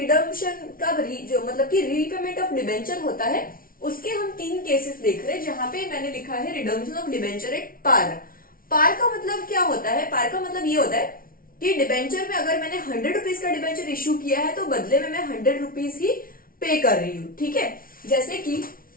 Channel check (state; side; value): late; right; 0.42 ms